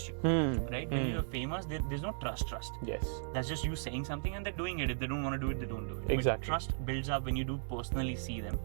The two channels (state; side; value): silent; left; digital silence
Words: you, right? When you're famous, there's no trust. That's just you saying something and they're doing it. If they don't want to do it, they don't do it. Exactly. But trust builds up when you do personally see them.